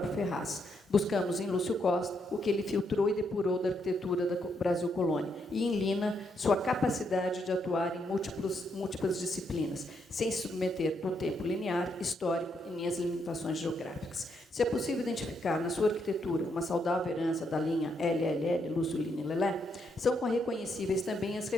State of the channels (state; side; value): normal; both; correlation 0.77